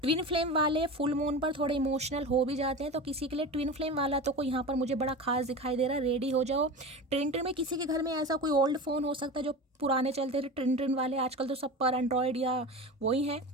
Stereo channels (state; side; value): normal; both; correlation 0.29